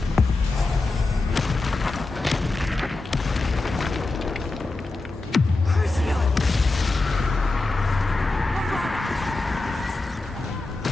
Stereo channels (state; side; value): quieter; right; 3.2 dB